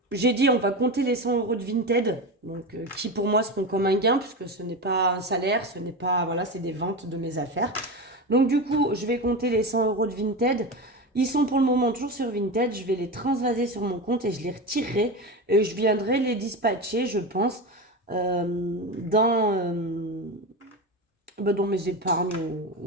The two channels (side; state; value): both; normal; correlation 0.21